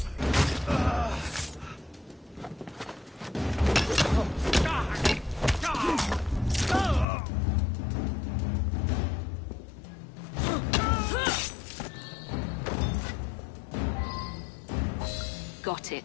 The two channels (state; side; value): drops out; right; at 7.1 s